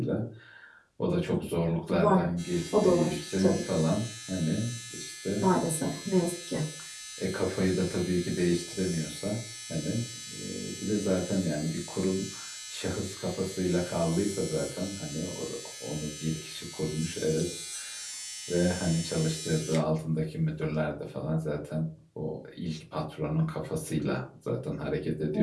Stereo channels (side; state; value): both; identical; correlation 1.00